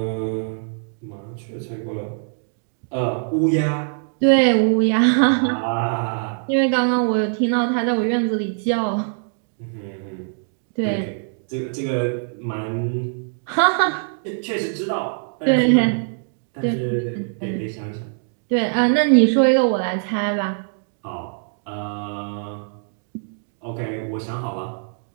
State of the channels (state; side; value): silent; left; digital silence